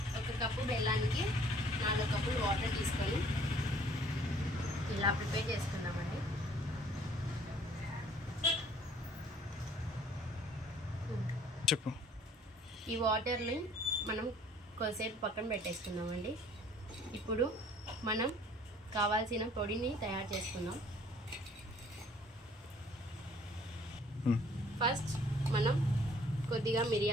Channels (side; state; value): both; normal; correlation 0.57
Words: ఒక కప్పు బెల్లానికి 4 కప్పులు వాటర్ తీసుకొని ఇలా ప్రిపేర్ చేసుకుందామండి. చెప్పు. ఈ వాటర్ని మనం కొద్దిసేపు పక్కన పెట్టేసుకుందామండి. ఇప్పుడు మనం కావాల్సిన పొడిని తయారు చేసుకుందాం. ఫస్ట్ మనం కొద్దిగా